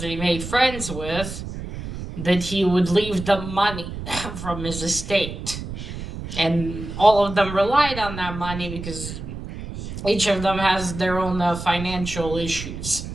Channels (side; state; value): right; noise; rumble, 9 dB below the sound